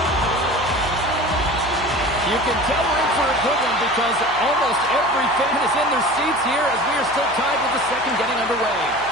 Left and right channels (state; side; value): noise; left; hum, 20 dB below the sound